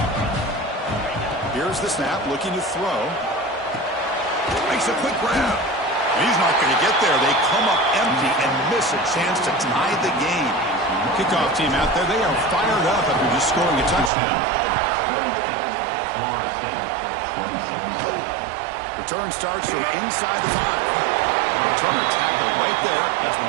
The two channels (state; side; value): drops out; left; at 14.1 s